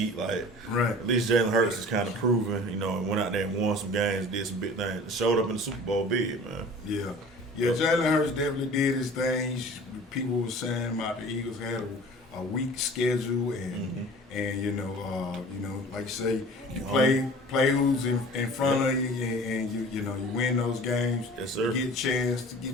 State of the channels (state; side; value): normal; both; correlation 0.43